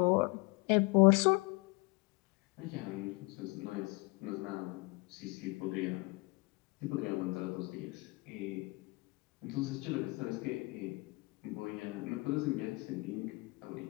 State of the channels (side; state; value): right; quieter; 26.0 dB